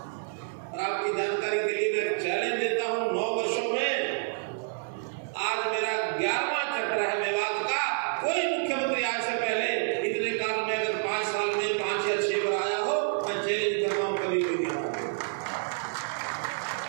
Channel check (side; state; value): left; silent; 59 dB below the other